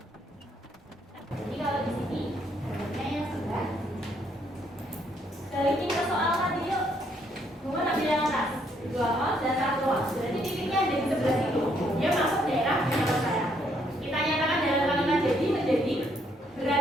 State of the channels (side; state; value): both; normal; correlation 0.71